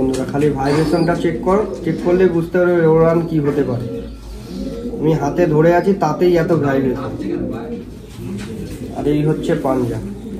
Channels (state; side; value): identical; both; correlation 1.00